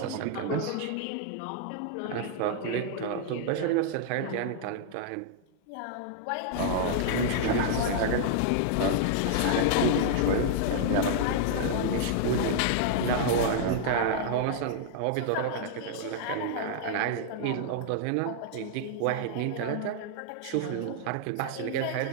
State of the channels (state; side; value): different; both; correlation -0.01